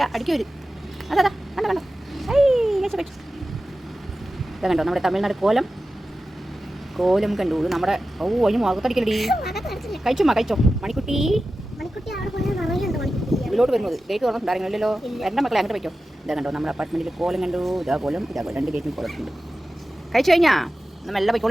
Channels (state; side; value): normal; both; correlation 0.94